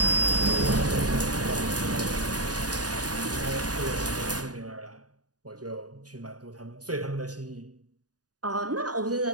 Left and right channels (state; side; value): late; left; 0.68 ms